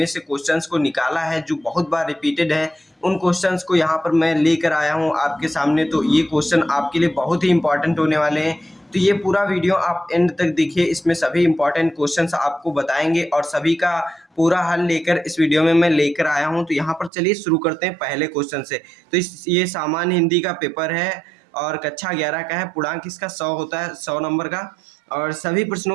से क्वेश्चंस को निकाला है जो बहुत बार रिपीटेड है, उन क्वेश्चंस को यहाँ पर मैं लेकर आया हूँ आपके सामने। तो ये क्वेश्चन आपके लिए बहुत ही इंपॉर्टेंट होने वाले हैं। तो ये पूरा वीडियो आप एंड तक देखिए, इसमें सभी इंपॉर्टेंट क्वेश्चंस आपको बताएंगे और सभी का पूरा हल लेकर इस वीडियो में मैं लेकर आया हूँ। तो यहाँ पर चलिए शुरू करते हैं पहले क्वेश्चन से। तो ये सामान्य हिंदी का पेपर है और कक्षा 11 का है। पूर्णांक इसका 100 होता है, 100 नंबर का, और सभी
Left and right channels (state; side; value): drops out; left; at 17.1 s